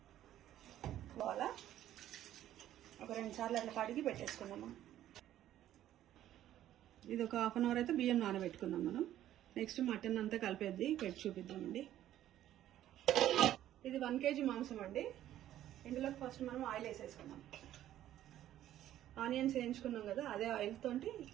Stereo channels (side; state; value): left; quieter; 12.5 dB